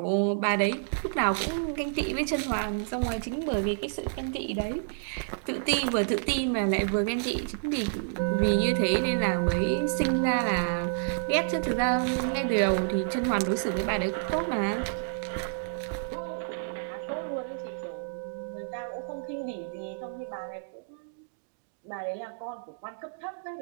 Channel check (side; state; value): left; silent; digital silence